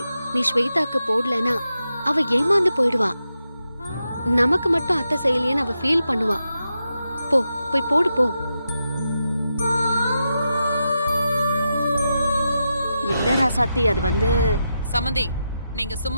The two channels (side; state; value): both; inverted; correlation -0.87